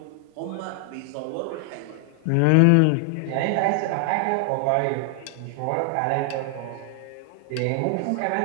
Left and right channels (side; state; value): both; different; correlation 0.00